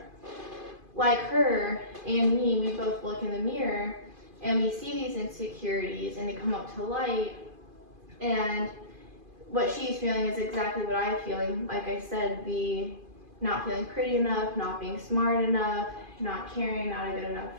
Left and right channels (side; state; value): left; late; 2.5 ms